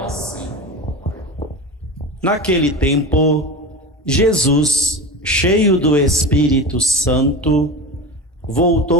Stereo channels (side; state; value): both; normal; correlation 0.27